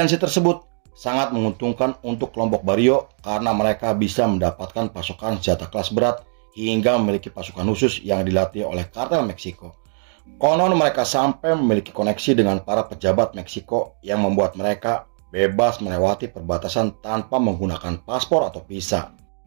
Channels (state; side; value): silent; left; 56 dB below the other